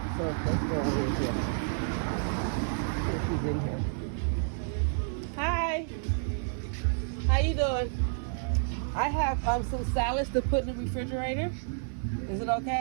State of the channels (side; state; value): left; silent; 58 dB below the other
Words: So let's go over here. She's in here. Hi. How you doing? I have some salads to put in the refrigerator. Is it